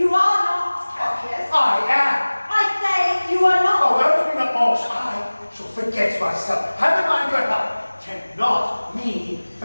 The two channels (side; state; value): both; inverted; correlation -1.00